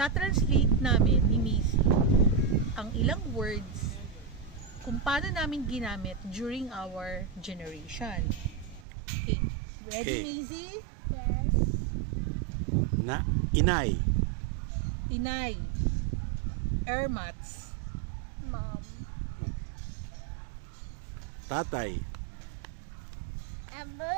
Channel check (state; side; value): drops out; left; at 8.8 s